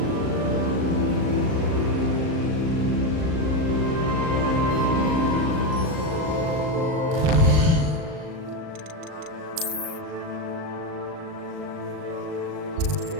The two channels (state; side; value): late; left; 38 ms